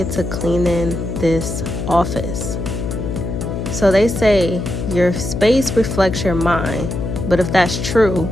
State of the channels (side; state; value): left; noise; hum, 4 dB below the sound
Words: to cleaning this office. So they say your space reflects your mind, but if that's true,